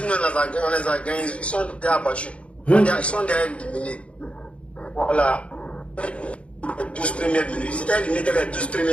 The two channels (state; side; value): late; right; 0.061 ms